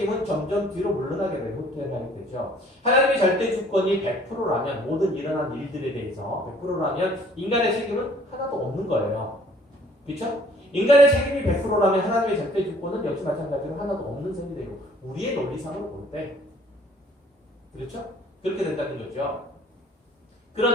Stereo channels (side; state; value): both; normal; correlation 0.56